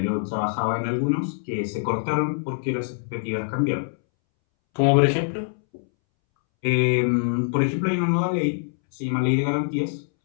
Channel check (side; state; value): right; silent; 63 dB below the other